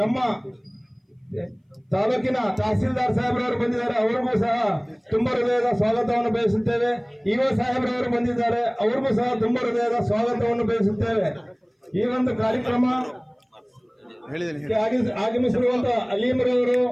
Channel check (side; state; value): both; identical; correlation 1.00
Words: ತಾಲೂಕಿನ ತಹಸೀಲ್ದಾರ್ ಸಾಹೇಬ್ರವರು ಬಂದಿದ್ದಾರೆ, ಅವರಿಗೂ ಸಹ ತುಂಬಾ ಹೃದಯದ ಸ್ವಾಗತವನ್ನು ಬಯಸುತ್ತೇವೆ. ಇಒ ಸಾಹೇಬ್ರವರು ಬಂದಿದ್ದಾರೆ, ಅವರಿಗೂ ಸಹ ತುಂಬಾ ಹೃದಯದ ಸ್ವಾಗತವನ್ನು ಬಯಸುತ್ತೇವೆ. ಈ ಒಂದು ಕಾರ್ಯಕ್ರಮ ಆಗಮಿಸಿರುವಂತ ಅಲೀಮ್ರವರು,